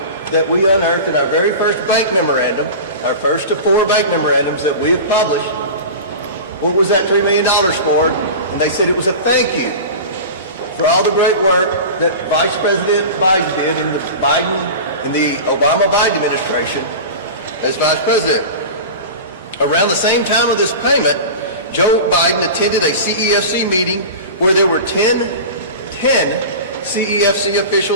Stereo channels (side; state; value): both; inverted; correlation -0.32